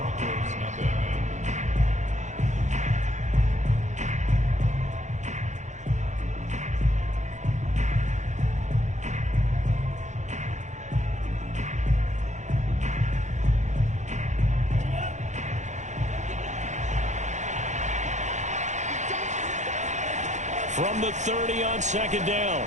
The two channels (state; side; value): late; left; 0.34 ms